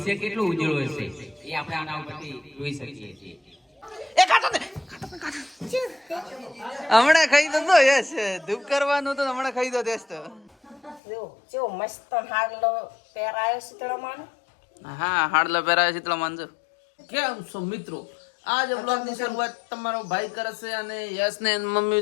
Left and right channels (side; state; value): right; drops out; at 11.0 s